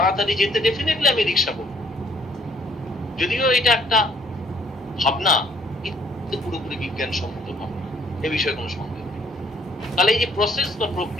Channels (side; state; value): both; normal; correlation 0.64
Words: যেতে ডেফিনেটলি আমি রিক্সা করব। যদিও এটা একটা ভাবনা, কিন্তু পুরোপুরি বিজ্ঞানসম্মত ভাবনা, এ বিষয়ে কোনো সন্দেহ নেই। তাহলে এই যে প্রসেস বা